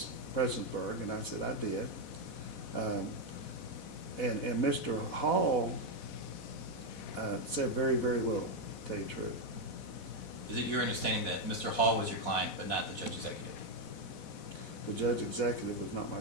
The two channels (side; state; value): right; late; 4.1 ms